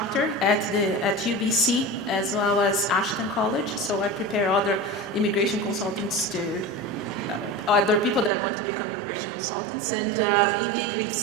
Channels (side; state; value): left; drops out; at 8.3 s